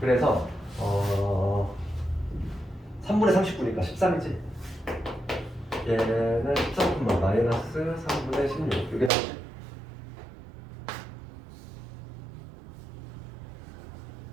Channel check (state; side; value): drops out; left; at 9.1 s